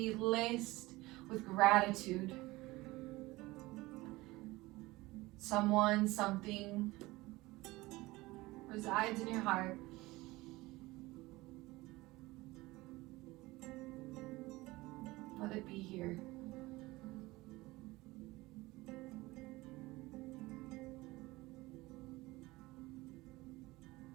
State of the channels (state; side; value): quieter; left; 20.3 dB